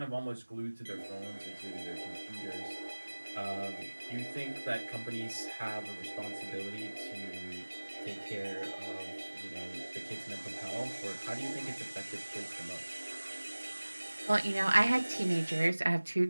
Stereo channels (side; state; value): both; inverted; correlation -1.00